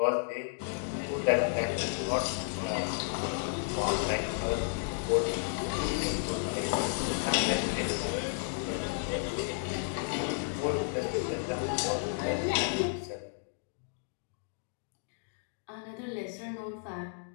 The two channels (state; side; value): silent; right; digital silence